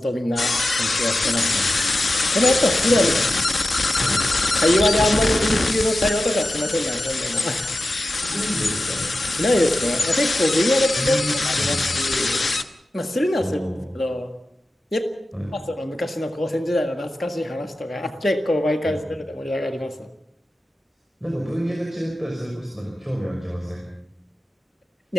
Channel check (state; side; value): normal; both; correlation 0.93